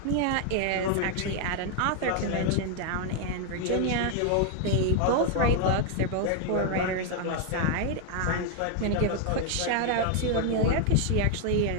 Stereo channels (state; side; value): different; both; correlation 0.00